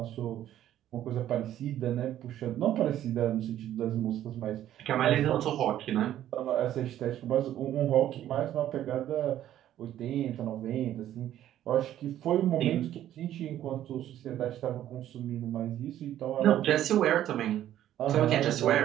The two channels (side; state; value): left; quieter; 12.1 dB